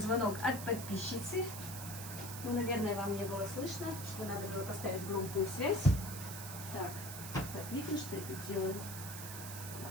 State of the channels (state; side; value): noise; right; hiss, 9 dB below the sound